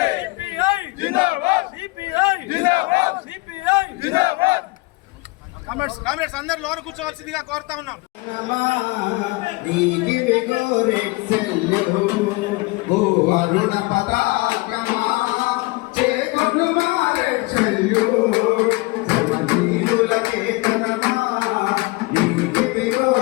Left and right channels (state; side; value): quieter; right; 24.2 dB